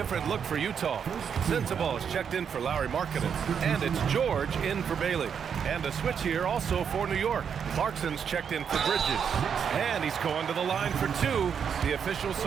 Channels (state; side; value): quieter; left; 7.3 dB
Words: look for Utah. Sensabaugh is checked in for Lauri Markkanen. And it's George in for Bailey. And a switch here also for New York. Clarkson's checked in for Bridges. And he's going to the line for 2. The official